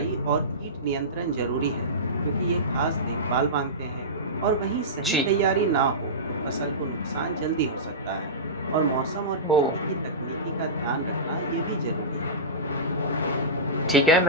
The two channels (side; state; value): both; normal; correlation -0.19